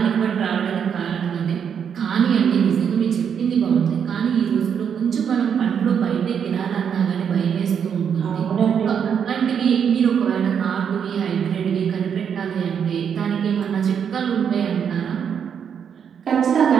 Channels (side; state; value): left; quieter; 7.7 dB